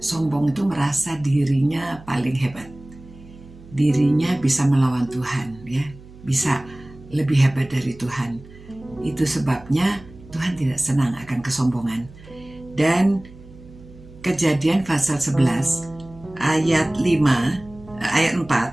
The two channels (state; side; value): noise; right; hum, 20 dB below the sound